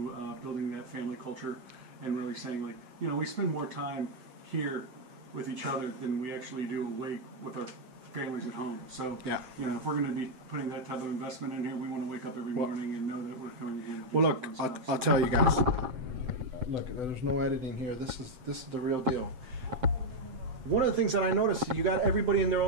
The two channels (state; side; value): late; left; 8.0 ms